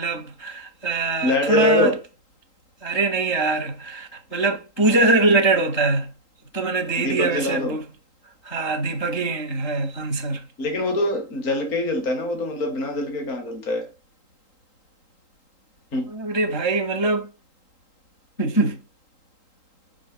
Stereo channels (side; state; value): right; late; 3.8 ms